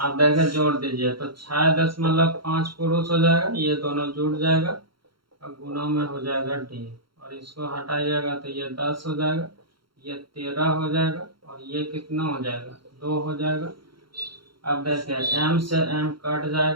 देखें जोड़ दीजिए तो 6.5 पुरुष हो जाएगा, ये दोनों जुड़ जाएगा और गुना में हो जाएगा डी। और इसको हटाइएगा तो ये 10 हो जाएगा, ये 13 हो जाएगा और ये कितना हो जाएगा 2 हो जाएगा। अब देखिए m से m कट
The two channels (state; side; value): late; left; 0.73 ms